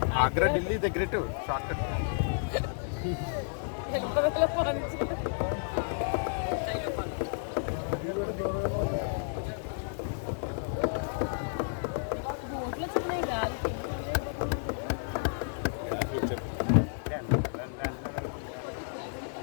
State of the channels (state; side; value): silent; right; digital silence